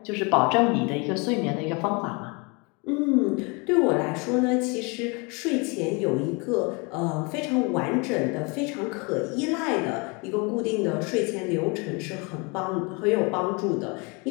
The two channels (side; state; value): right; quieter; 30.2 dB